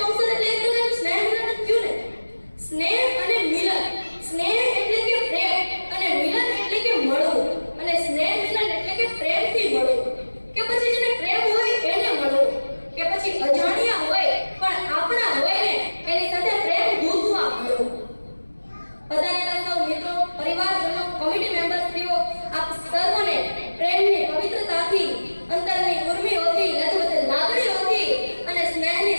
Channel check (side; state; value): both; inverted; correlation -1.00